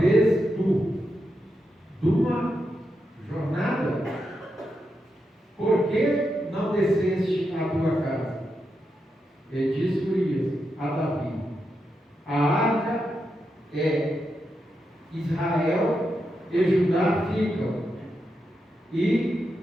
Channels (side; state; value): both; normal; correlation 0.86